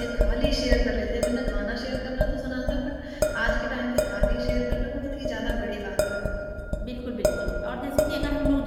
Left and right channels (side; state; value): both; identical; correlation 1.00